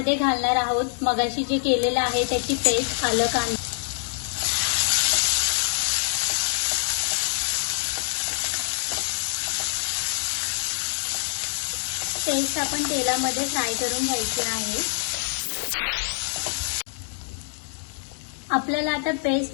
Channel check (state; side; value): silent; right; digital silence